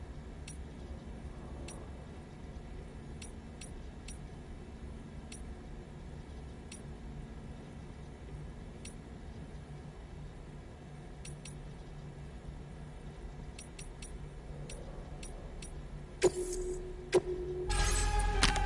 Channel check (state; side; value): identical; both; correlation 1.00